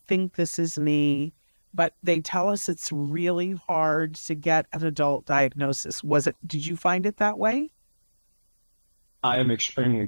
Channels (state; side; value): inverted; both; correlation -1.00